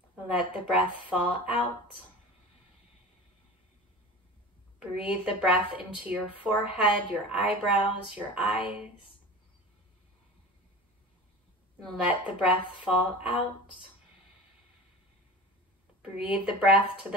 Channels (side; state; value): both; normal; correlation 0.34